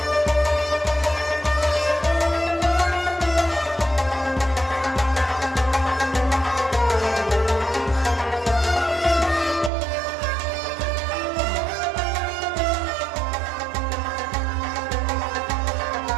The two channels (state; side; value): drops out; left; at 9.7 s